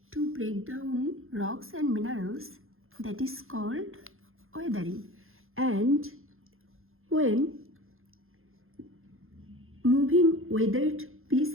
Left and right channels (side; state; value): left; late; 0.61 ms